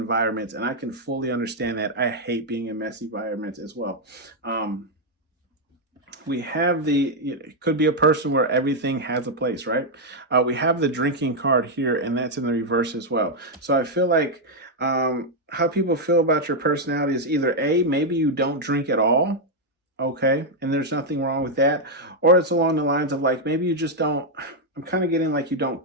and I can fully understand that. I hate being in messy environments as well. We have it could be a person where everything has a place, right? We have the drinking card here, and that's in the reverse as well. So I feel like how people feel about your personality is either A, maybe you don't drink at all, okay, and there's nothing wrong with that, or it's along the lines of like, maybe you just don't, I'm kind of getting like you don't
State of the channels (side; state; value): both; normal; correlation 0.00